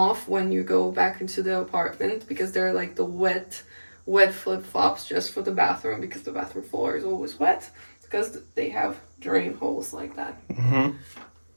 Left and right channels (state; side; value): inverted; both; correlation -1.00